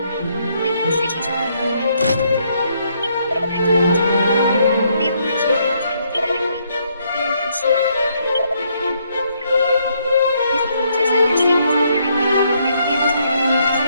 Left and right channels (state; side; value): inverted; both; correlation -0.72